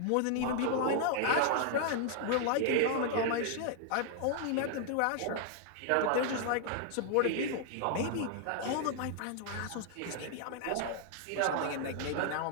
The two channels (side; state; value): both; different; correlation 0.00